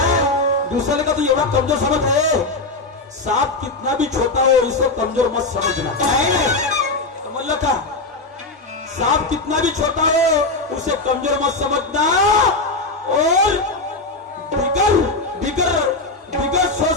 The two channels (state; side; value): quieter; right; 3.2 dB